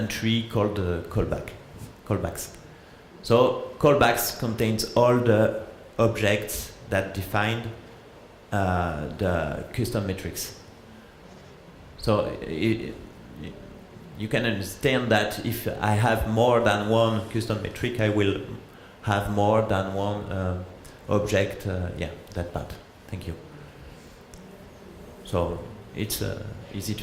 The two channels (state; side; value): identical; both; correlation 1.00